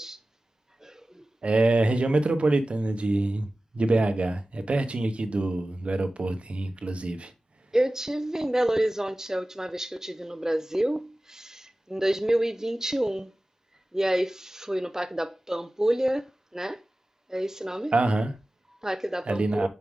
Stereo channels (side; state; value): both; normal; correlation 0.96